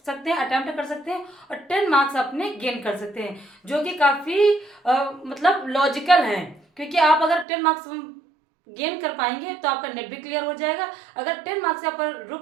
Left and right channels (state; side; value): drops out; left; at 7.5 s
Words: सकते हैं, अटेम्प्ट कर सकते हैं और 10 मार्क्स अपने गेन कर सकते हैं, जो कि काफ़ी मतलब लॉजिकल है। क्योंकि आप अगर 10 मार्क्स गेन कर पाएंगे तो आपका नेट भी क्लियर हो जाएगा। अगर 10 मार्क्स यहाँ पर